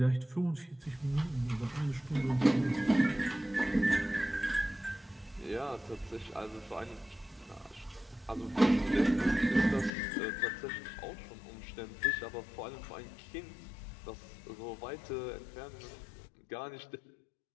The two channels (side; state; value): right; drops out; at 9.9 s